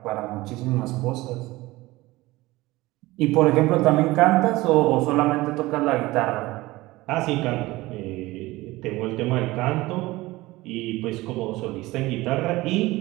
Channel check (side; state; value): left; quieter; 19.5 dB